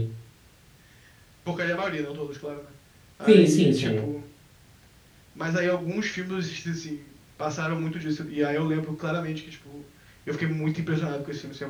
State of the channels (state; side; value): identical; both; correlation 1.00